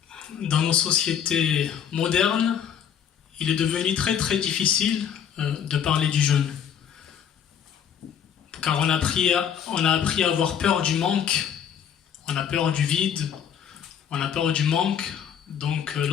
dans nos sociétés modernes, il est devenu très très difficile de parler du jeûne. Car on a appris à avoir peur du manque, on a peur du vide, on a peur du manque. Donc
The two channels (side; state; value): right; quieter; 8.5 dB